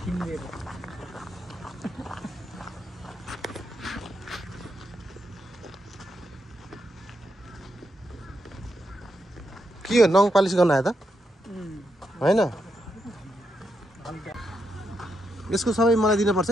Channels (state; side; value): normal; both; correlation 0.82